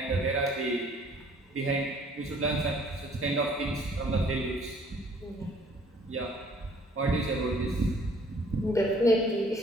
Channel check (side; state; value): both; normal; correlation 0.58